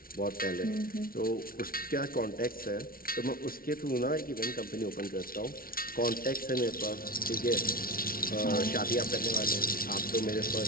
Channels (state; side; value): late; right; 0.43 ms